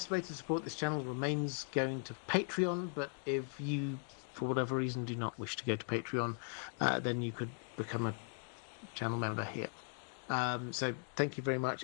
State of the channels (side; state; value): right; silent; 52 dB below the other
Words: way to support this channel remains going to Patreon, but if you, for whatever reason, do not wish to go to Patreon, then you could become a channel member here. So thank you very